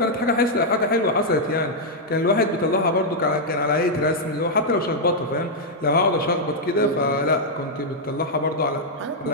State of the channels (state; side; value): normal; both; correlation -0.05